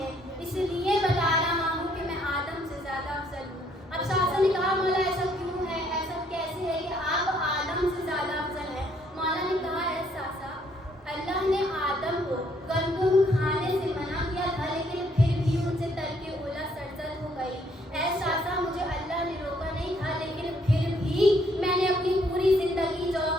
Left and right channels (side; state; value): both; normal; correlation 0.67